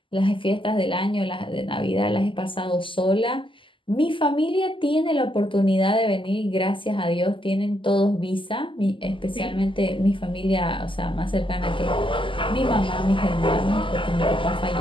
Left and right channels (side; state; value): right; late; 0.25 ms